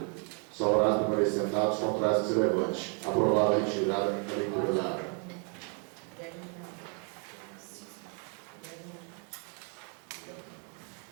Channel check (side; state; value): left; quieter; 35.0 dB